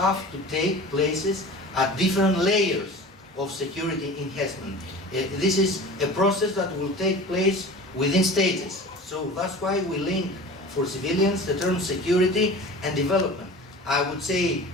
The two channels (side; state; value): both; normal; correlation 0.38